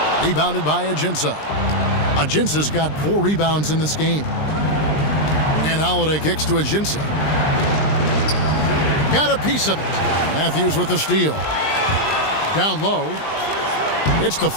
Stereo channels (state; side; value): late; right; 20 ms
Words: Rebounded by Ajinça. Ajinça's got 4 rebounds in this game. And Holiday kicks to Ajinça. Got a piece of it. Matthews with the steal. Down low. It's